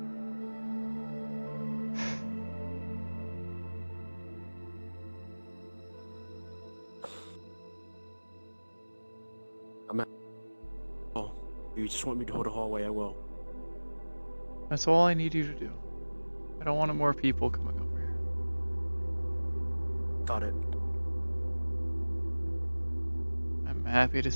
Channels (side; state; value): both; inverted; correlation -1.00